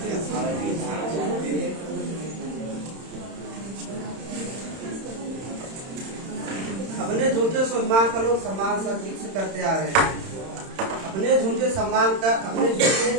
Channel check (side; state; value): left; late; 31 ms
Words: अपने झूठे सम्मान का लोग सम्मान सदीक से करते आ रहे हैं। अपने झूठे सम्मान